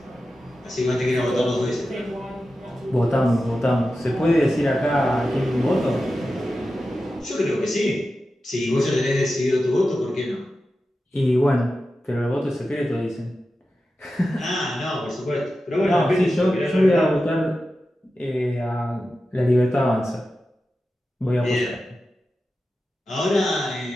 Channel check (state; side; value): normal; both; correlation 0.92